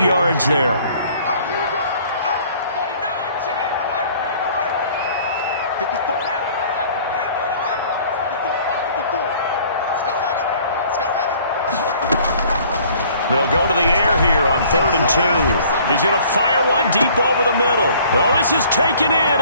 yards there. They'll go to the air here on 3rd and 2. He's going to fire one deep over the middle. Oh, this is taken in.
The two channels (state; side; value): inverted; both; correlation -0.54